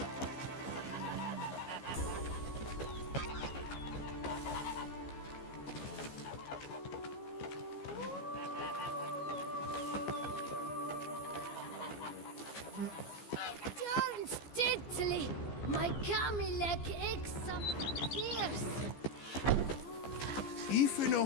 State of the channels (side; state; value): right; late; 15 ms